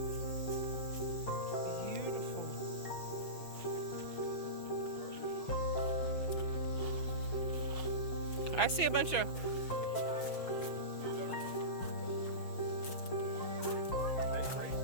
Beautiful. I see a bunch of.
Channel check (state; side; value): late; right; 6.1 ms